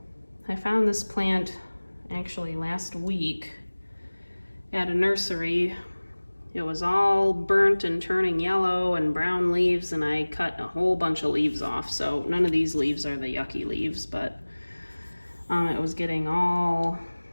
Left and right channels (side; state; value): both; inverted; correlation -1.00